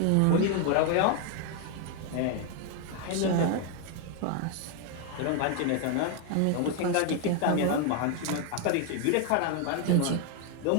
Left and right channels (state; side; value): different; both; correlation 0.00